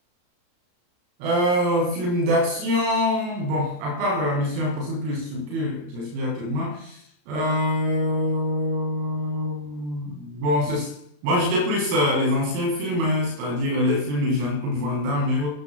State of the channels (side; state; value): left; late; 34 ms